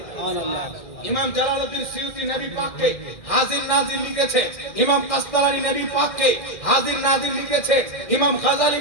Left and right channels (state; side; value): late; right; 1.6 ms